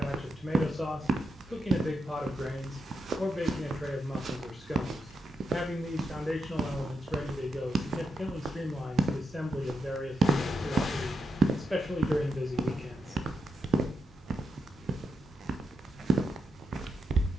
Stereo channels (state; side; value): normal; both; correlation 0.85